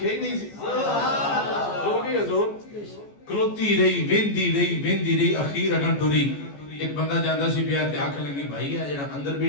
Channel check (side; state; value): right; late; 14 ms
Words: ہی نہیں سی کھلو گئی حضور کھلوتی رہی اخیر اگن ٹوری ایک بندہ جاندہ سی پیا تے آنکھ لگی بھائی ہے جنہاں اندر